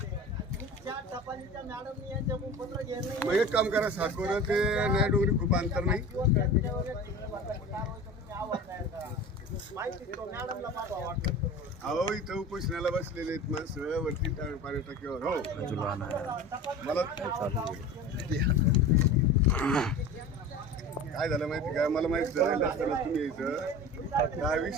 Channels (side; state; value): both; normal; correlation 0.35